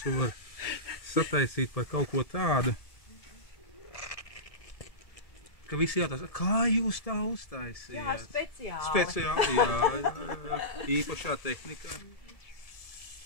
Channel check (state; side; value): late; right; 1.7 ms